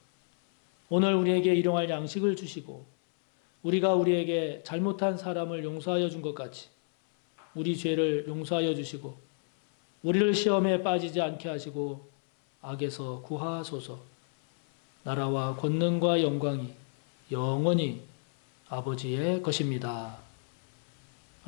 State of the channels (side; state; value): right; silent; 58 dB below the other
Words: 오늘 우리에게 일용할 양식을 주시고 우리가 우리에게 잘못한 사람을 용서하여 준 것 같이 우리 죄를 용서하여 주시고 우리를 시험에 빠지지 않게 하시고 악에서 구하소서. 나라와 권능과 영광이 영원히 아버지의 것입니다.